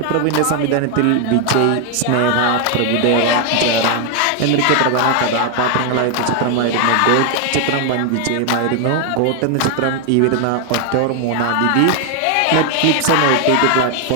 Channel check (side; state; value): both; different; correlation 0.01